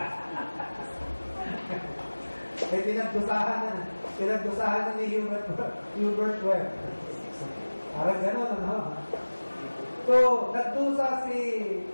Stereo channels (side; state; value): both; inverted; correlation -1.00